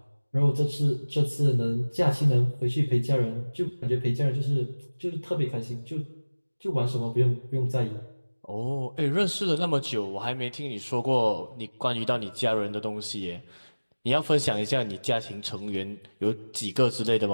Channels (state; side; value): inverted; both; correlation -1.00